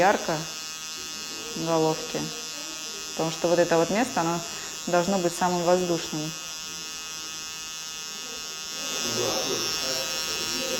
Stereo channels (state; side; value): identical; both; correlation 1.00